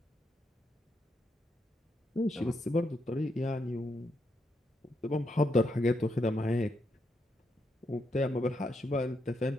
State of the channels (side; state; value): both; normal; correlation 0.80